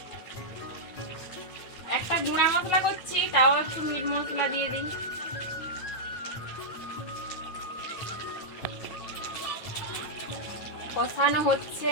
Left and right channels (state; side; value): late; right; 9.0 ms